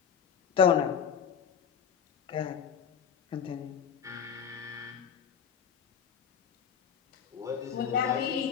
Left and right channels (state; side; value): quieter; right; 7.7 dB